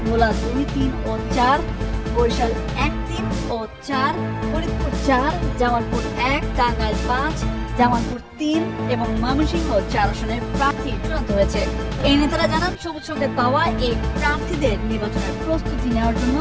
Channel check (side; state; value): both; identical; correlation 1.00